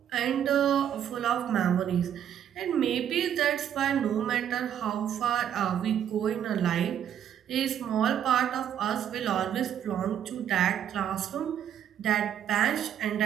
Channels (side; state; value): left; quieter; 9.6 dB